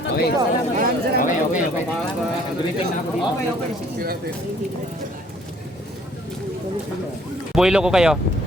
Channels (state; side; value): normal; both; correlation 0.60